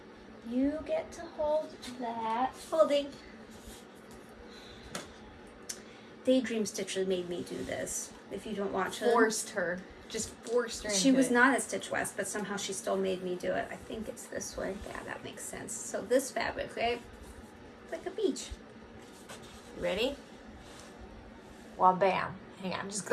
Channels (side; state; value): both; identical; correlation 1.00